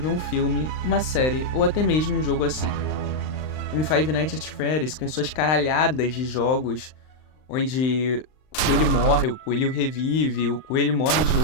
um filme, uma série ou até mesmo um jogo assim. Como Five Nights at Freddy's, com suas caralhadas de jogos, onde o coelho morre, o coelho revive, o coelho morre de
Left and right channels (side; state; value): right; late; 39 ms